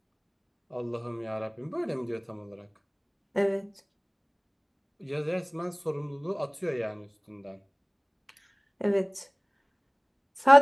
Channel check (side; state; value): both; identical; correlation 1.00